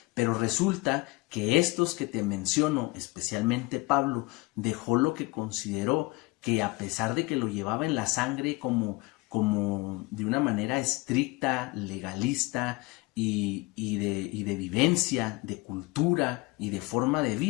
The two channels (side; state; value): right; quieter; 23.6 dB